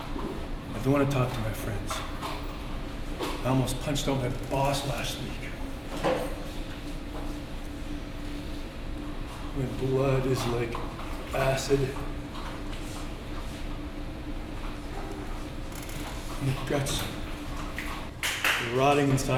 I don't want to talk to my friends. I almost punched out my boss last week. My blood is like acid. My guts are rotting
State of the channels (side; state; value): both; identical; correlation 1.00